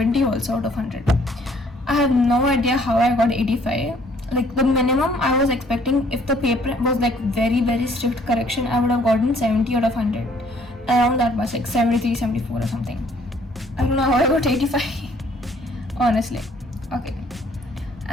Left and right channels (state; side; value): normal; both; correlation 0.61